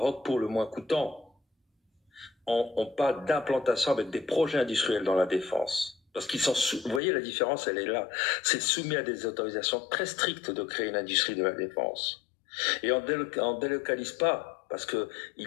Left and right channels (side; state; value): right; drops out; at 7.0 s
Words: pour le moins coûtant. On parle d'implantation avec des projets industriels dans la défense. Parce qu'ils sont vous voyez, la différence, elle est là. C'est soumis à des autorisations très strictes de créer une industrie de la défense. Et on délocalise pas parce que